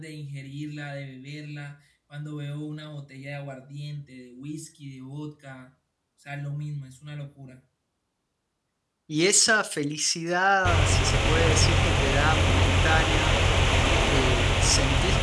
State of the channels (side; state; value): both; identical; correlation 1.00